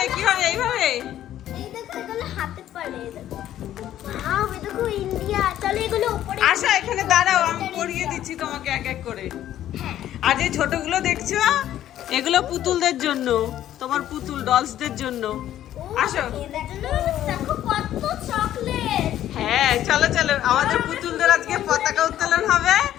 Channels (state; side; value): quieter; right; 12.1 dB